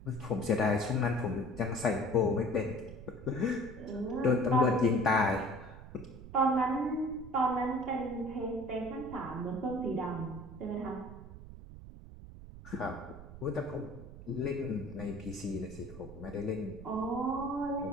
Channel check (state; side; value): noise; right; rumble, 14 dB below the sound